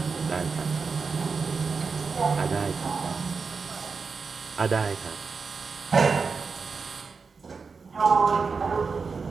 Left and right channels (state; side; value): quieter; left; 4.9 dB